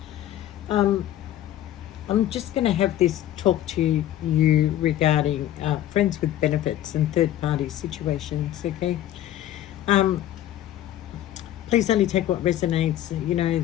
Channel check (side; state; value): right; quieter; 12.7 dB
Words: um, I'm just going to have this talk to you regarding friends with benefits and third-party situations. Okay, um, please only take what resonates. You know,